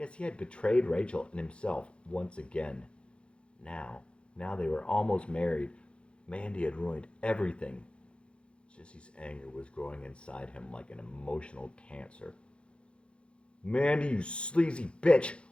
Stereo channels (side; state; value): right; late; 0.057 ms